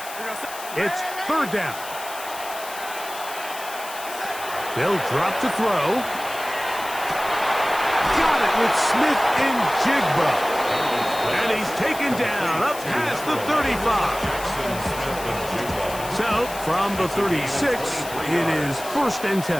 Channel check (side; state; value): left; noise; hiss, 12 dB below the sound